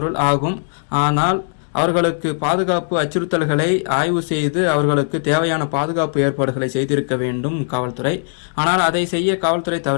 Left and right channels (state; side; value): silent; right; digital silence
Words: ஆகும். ஆனால் அவர்களுக்கு பாதுகாப்பு அச்சுறுத்தல்களை ஆய்வு செய்து அவர்களுக்கு தேவையான பாதுகாப்பு ஏற்பாடுகளை செய்திருக்க வேண்டும் காவல்துறை. ஆனால் அதை செய்ய காவல்துறை